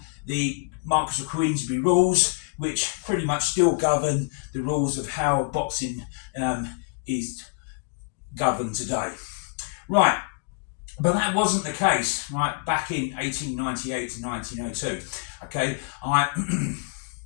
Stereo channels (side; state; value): right; quieter; 37.8 dB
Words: the Marquess of Queensberry rules, which pretty much still govern the rules of how boxing is governed today. Right, but that wasn't the case, right, back in 1898 to 1902, okay.